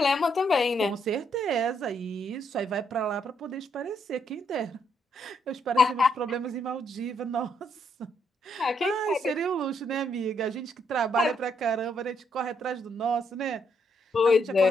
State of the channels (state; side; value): normal; both; correlation 0.74